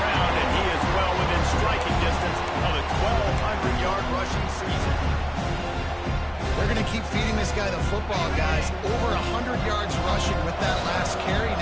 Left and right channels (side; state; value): both; identical; correlation 1.00